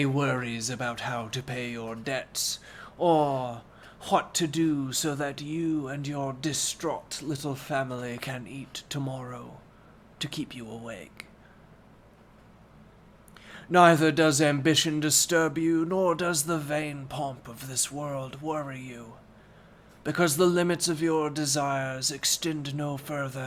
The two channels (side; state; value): both; identical; correlation 1.00